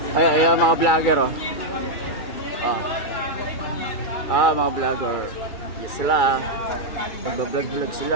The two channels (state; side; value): late; right; 2.3 ms